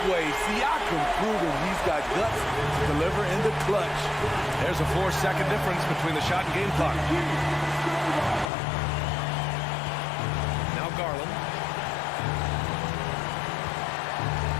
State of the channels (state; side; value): drops out; right; at 8.5 s